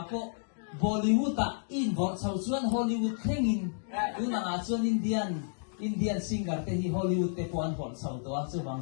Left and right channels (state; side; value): silent; right; digital silence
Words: po Bollywood involve sau chuan Hollywood thengin tunanga chuan Indian singer te hi Hollywood te puan hol sau to